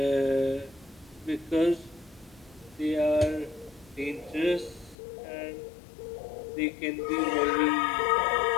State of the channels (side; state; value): right; drops out; at 5.0 s